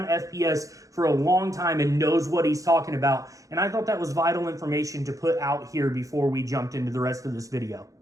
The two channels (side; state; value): left; late; 0.16 ms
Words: FPS for a long time and knows what he's talking about. And I thought that was vital information to put out here before we jumped into the rest of this video.